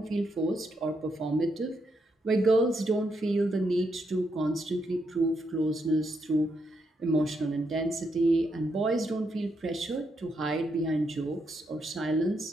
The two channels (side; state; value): both; normal; correlation 0.79